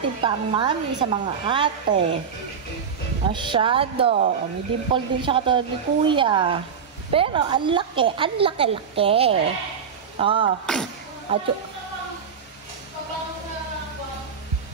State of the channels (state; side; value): quieter; left; 6.7 dB